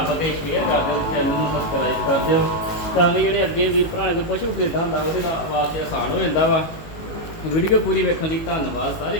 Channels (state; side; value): late; right; 18 ms